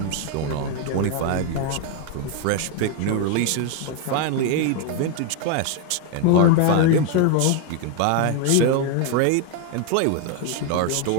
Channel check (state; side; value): different; both; correlation 0.01